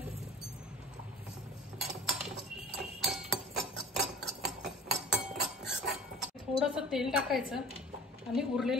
थोडंसं तेल टाकायचं आणि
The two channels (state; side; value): normal; both; correlation 0.44